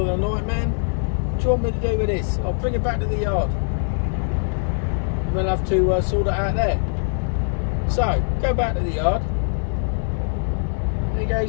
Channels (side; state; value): right; silent; digital silence